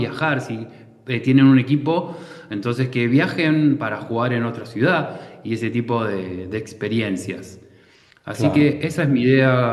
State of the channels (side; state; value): both; identical; correlation 1.00